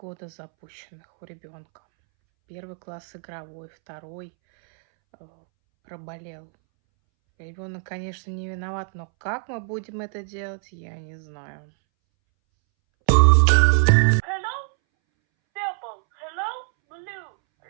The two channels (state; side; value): silent; left; 62 dB below the other